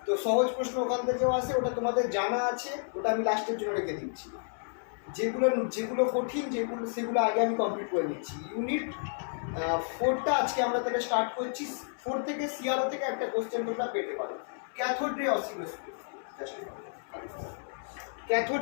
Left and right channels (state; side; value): silent; right; 57 dB below the other